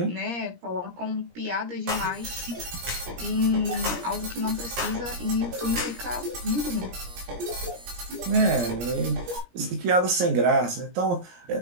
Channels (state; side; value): late; left; 17 ms